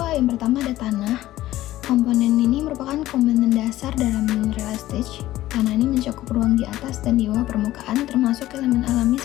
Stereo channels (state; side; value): quieter; right; 15.1 dB